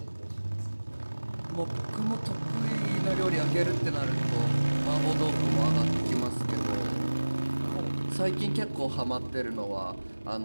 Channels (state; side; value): inverted; both; correlation -1.00